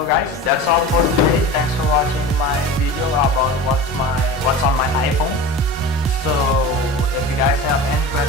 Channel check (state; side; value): normal; both; correlation 0.32